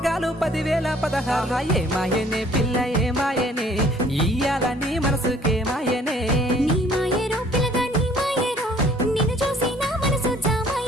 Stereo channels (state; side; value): normal; both; correlation 0.57